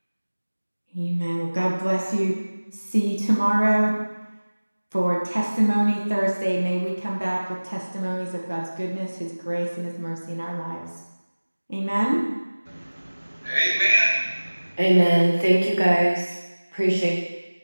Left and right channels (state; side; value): inverted; both; correlation -1.00